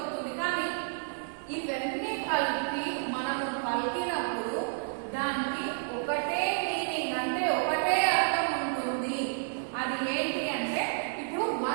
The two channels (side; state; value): left; silent; 57 dB below the other